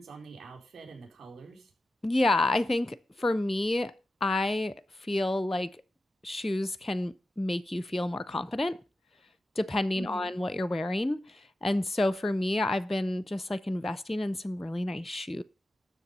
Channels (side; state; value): both; normal; correlation 0.92